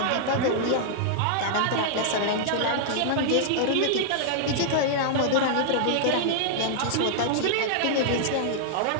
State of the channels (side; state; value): both; different; correlation -0.01